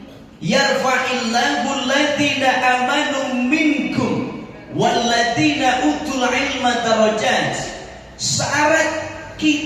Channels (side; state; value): both; identical; correlation 1.00